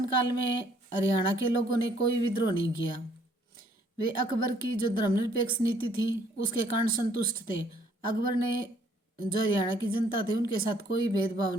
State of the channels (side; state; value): both; normal; correlation 0.64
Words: में हरियाणा के लोगों ने कोई विद्रोह नहीं किया। वे अकबर की जो धर्मनिरपेक्ष नीति थी उसके कारण संतुष्ट थे। अकबर ने जो हरियाणा की जनता थी उनके साथ कोई भेदभाव